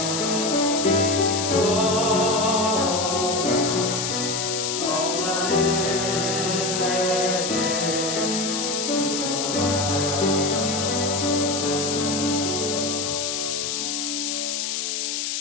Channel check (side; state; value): left; noise; hiss, 1 dB below the sound